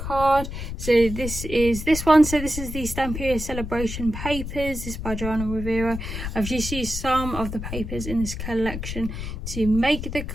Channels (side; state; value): left; noise; rumble, 6 dB below the sound